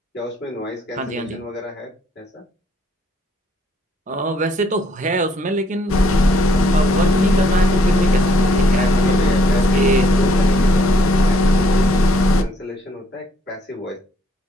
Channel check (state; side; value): normal; both; correlation 0.68